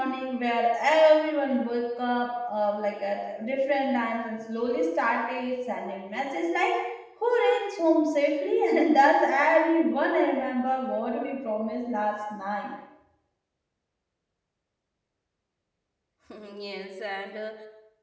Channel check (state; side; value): identical; both; correlation 1.00